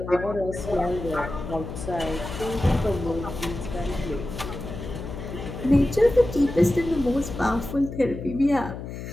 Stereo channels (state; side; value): noise; left; hum, 9 dB below the sound